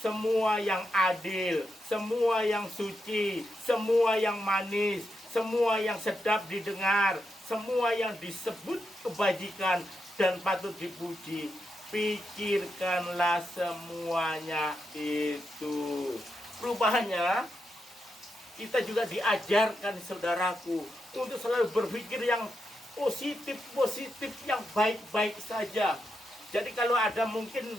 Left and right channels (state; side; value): normal; both; correlation 0.85